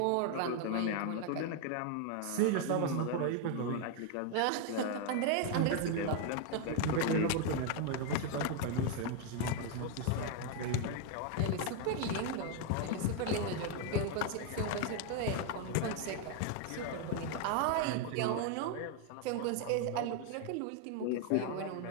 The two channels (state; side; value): different; both; correlation 0.01